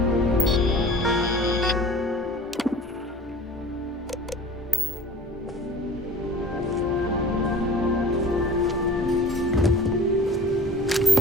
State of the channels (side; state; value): both; normal; correlation 0.42